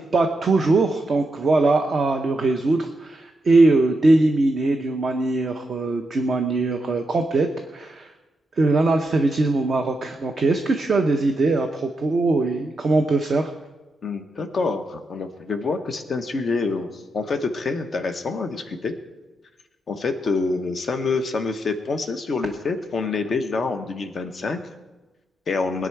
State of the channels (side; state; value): both; normal; correlation 0.84